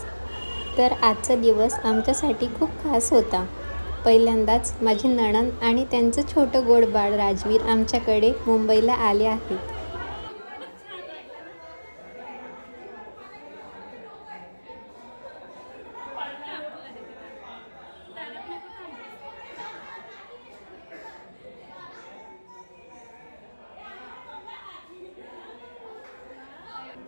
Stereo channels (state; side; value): inverted; both; correlation -1.00